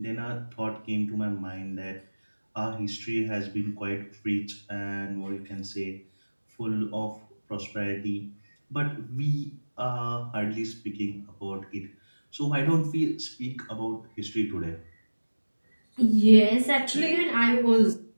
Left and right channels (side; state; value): both; inverted; correlation -1.00